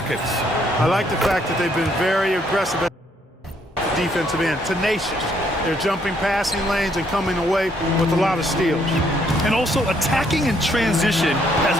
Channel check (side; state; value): both; normal; correlation 0.69